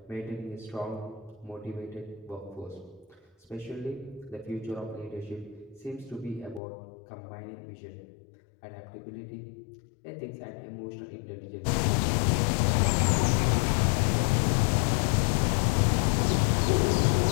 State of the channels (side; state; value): right; drops out; at 6.6 s